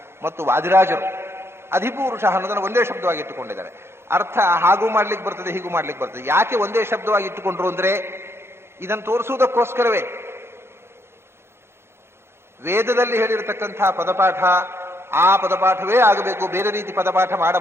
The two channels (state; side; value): late; left; 0.12 ms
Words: ಮತ್ತು ವಾದಿರಾಜರು ಅಧಿಪುರುಷ ಅನ್ನೋದನ್ನು ಒಂದೇ ಶಬ್ದವಾಗಿ ಇಟ್ಟುಕೊಂಡಿದ್ದಾರೆ. ಅರ್ಥ ಹಾಗೂ ಮಾಡ್ಲಿಕ್ಕೆ ಬರ್ತದೆ, ಹೀಗೂ ಮಾಡ್ಲಿಕ್ಕೆ ಬರ್ತದೆ. ಯಾಕೆ ಒಂದೇ ಶಬ್ದವಾಗಿ ಇಟ್ಟುಕೊಂಡ್ರು ಅಂದ್ರೆ ಇದನ್ನು ತೋರಿಸುವುದಕ್ಕೋಸ್ಕರವೇ. ವೇದದಲ್ಲಿ ಹೇಳಿರತಕ್ಕಂತಹ ಪದಪಾಠ ಆ ಪದಪಾಠವೇ ಆಗಬೇಕು, ಬೇರೆ ರೀತಿ ಪದಪಾಠ